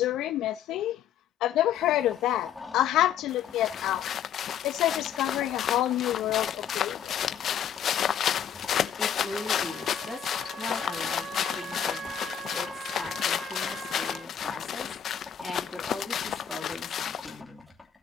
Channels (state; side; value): quieter; right; 9.2 dB